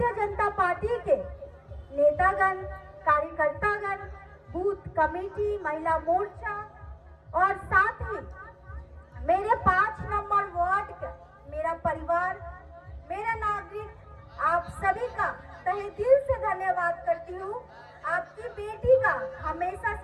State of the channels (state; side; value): identical; both; correlation 1.00